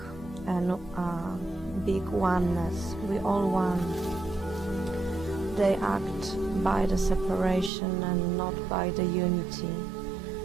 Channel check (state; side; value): drops out; left; at 7.7 s